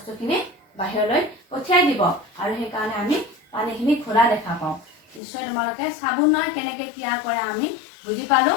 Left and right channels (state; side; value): drops out; right; at 5.2 s